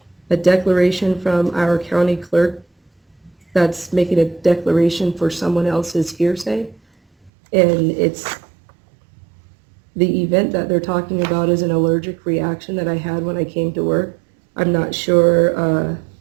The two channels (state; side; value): drops out; left; at 7.3 s